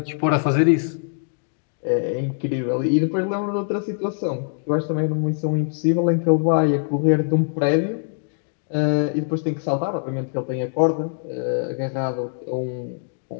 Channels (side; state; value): right; silent; digital silence